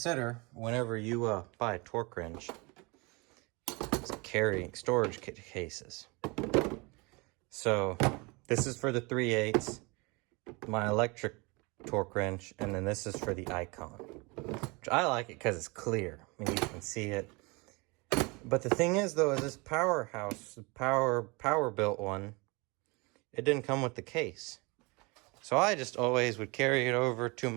whenever you buy a torque wrench is carrying storage cases. So this is for the 3/8, my electric torque wrench, and then this is for the Icon. Which I like it because it's clear. I mean, you can see it. But the thing is, though, is this Powerhouse, power built one, it didn't come with the case. So I just always would carry it over to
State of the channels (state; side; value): quieter; left; 27.4 dB